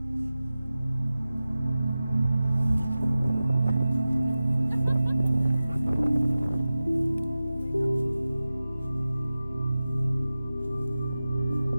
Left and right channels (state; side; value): inverted; both; correlation -0.96